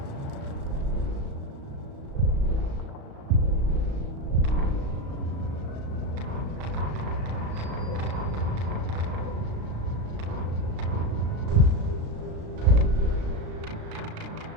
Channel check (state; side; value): late; left; 36 ms